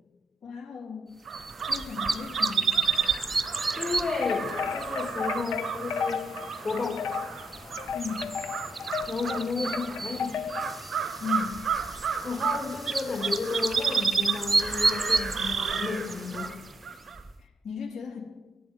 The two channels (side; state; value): both; normal; correlation 0.77